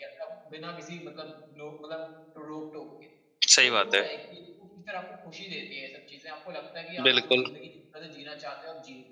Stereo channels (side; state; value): both; identical; correlation 1.00